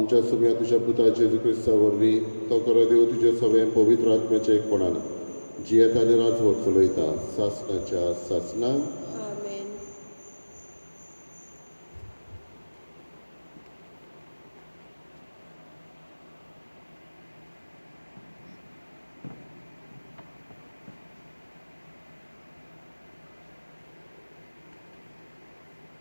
सगळ्या तुज्या पुता जेजू क्रिस्ता वरवीं तो खरो देव तुजे सगळें पवित्र आत्म्याच्या एकपणान जियेत आनी राजवट चलयता सासणाच्या सासणाक. आमेन.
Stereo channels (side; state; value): both; inverted; correlation -1.00